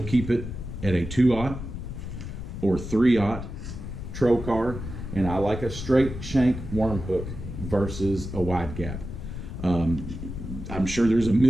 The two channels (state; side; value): noise; left; rumble, 8 dB below the sound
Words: keep it at a 2-aught or 3-aught trocar, and I like a straight shank worm hook versus a wide gap. I'm sure there's a